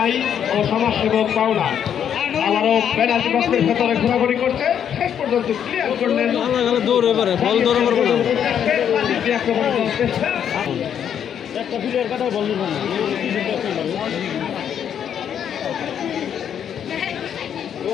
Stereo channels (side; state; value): right; quieter; 8.8 dB